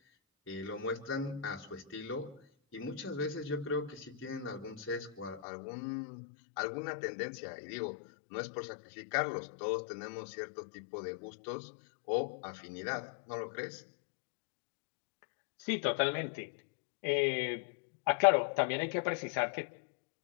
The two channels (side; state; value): right; drops out; at 5.4 s